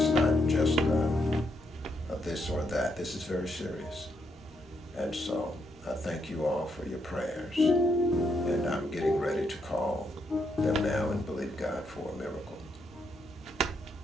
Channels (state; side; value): normal; both; correlation 0.77